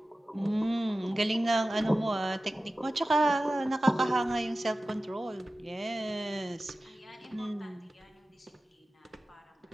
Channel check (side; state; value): both; normal; correlation 0.96